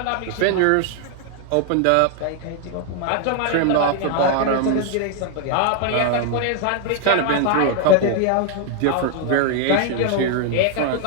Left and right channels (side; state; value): both; different; correlation 0.00